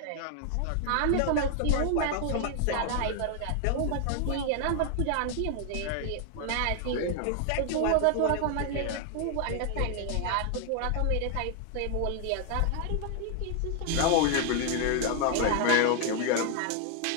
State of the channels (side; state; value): both; different; correlation 0.00